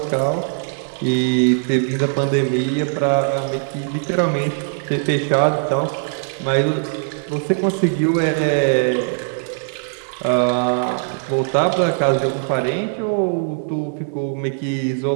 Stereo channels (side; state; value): left; silent; 66 dB below the other